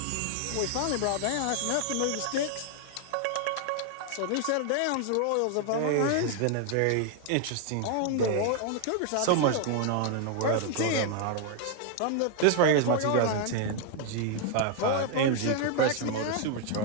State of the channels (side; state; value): both; different; correlation 0.00